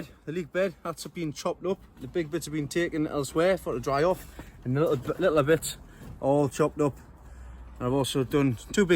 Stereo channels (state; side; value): identical; both; correlation 1.00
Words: the leek bed, that's been chopped up. The big bits have been taken elsewhere for it to dry off, and the little bits all chopped up. And I've also done 2